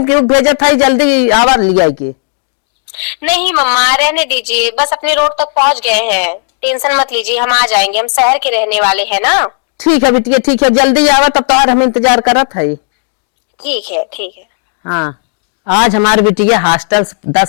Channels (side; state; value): right; silent; digital silence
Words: क्यों भेजत है जल्दी आवा लिया के। नहीं मम्मा रहने दीजिए, बस अपने रोड तक पहुंच गए हैं, टेंशन मत लीजिए, हम आ जाएंगे, हम शहर के रहने वाले हैं ना। ठीक है बेटिया ठीक है, जल्दी आवा तब तुम्हार हम इंतजार करत है। ठीक है ठीक है। हाँ, आज हमारी बिटिया हॉस्टल 10